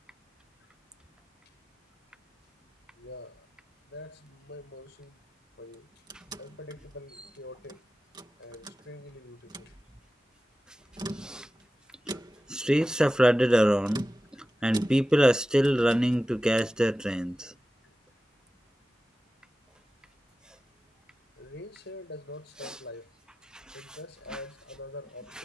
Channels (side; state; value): both; normal; correlation 0.95